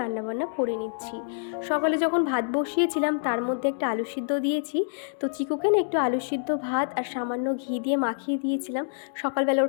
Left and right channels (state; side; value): silent; right; digital silence